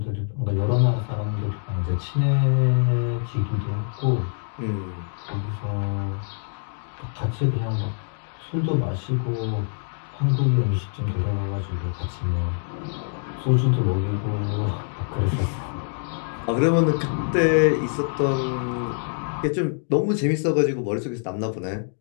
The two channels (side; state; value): right; silent; 62 dB below the other